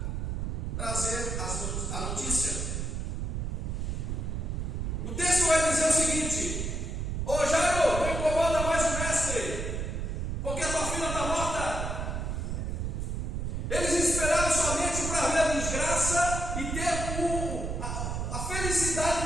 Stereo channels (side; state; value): right; noise; rumble, 2 dB below the sound